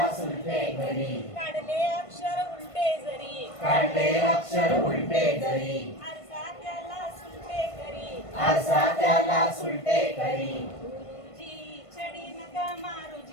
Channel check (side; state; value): right; late; 1.5 ms